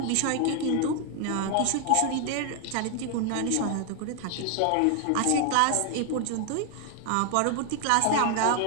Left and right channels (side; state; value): both; different; correlation 0.00